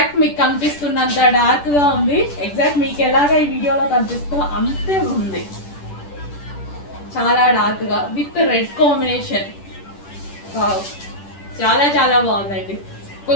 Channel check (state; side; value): late; right; 10 ms